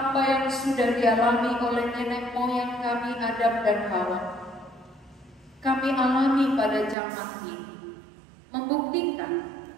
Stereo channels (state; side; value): drops out; left; at 7.0 s